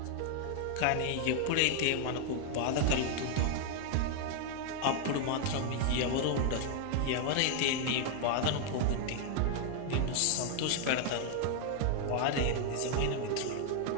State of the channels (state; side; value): different; both; correlation 0.00